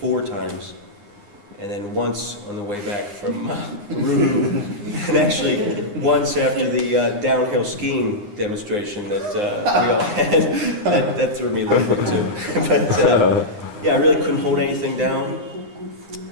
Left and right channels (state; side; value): late; left; 9.8 ms